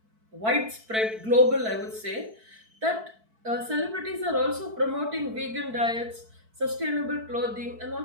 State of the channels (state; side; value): late; left; 4.6 ms